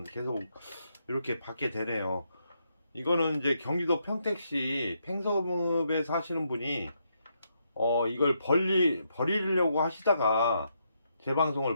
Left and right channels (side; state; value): both; inverted; correlation -0.79